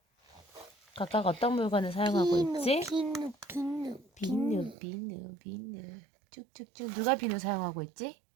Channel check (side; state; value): left; drops out; at 4.8 s